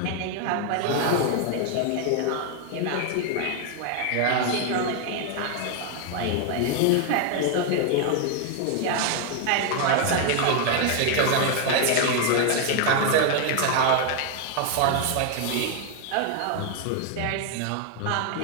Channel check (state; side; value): different; both; correlation 0.00